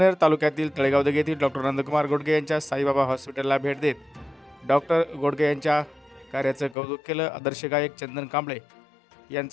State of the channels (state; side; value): drops out; right; at 6.8 s